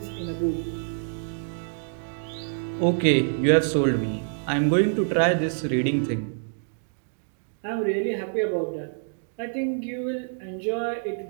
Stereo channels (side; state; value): left; silent; digital silence